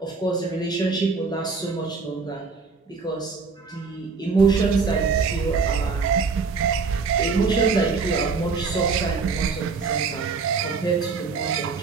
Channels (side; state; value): left; quieter; 4.8 dB